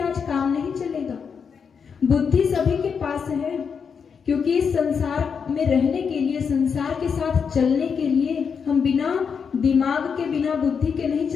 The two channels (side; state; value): right; quieter; 6.3 dB